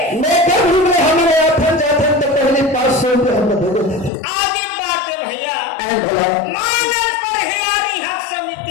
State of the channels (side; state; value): right; drops out; at 4.1 s